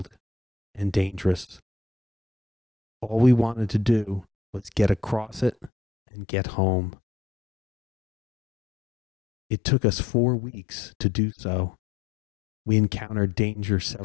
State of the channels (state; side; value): drops out; right; at 5.7 s